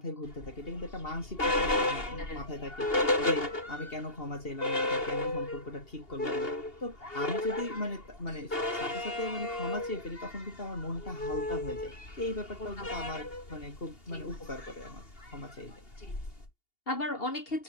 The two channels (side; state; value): right; late; 2.8 ms